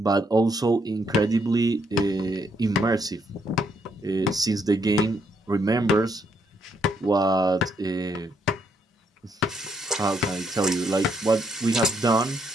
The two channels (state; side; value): normal; both; correlation 0.74